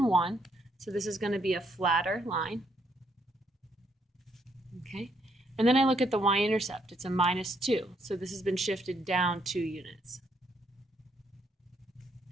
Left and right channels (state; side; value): normal; both; correlation 0.72